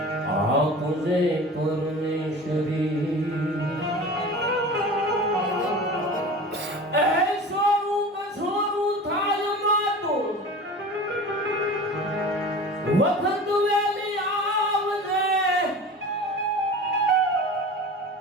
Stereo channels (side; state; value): both; normal; correlation 0.36